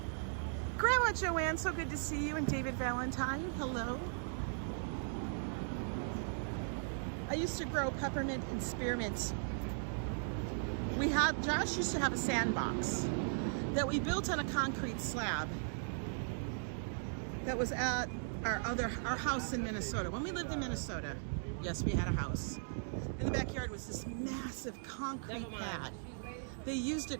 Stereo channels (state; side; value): silent; left; digital silence